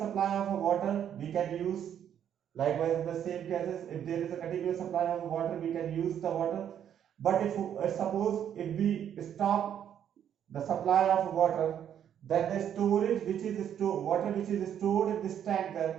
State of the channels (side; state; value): left; quieter; 9.5 dB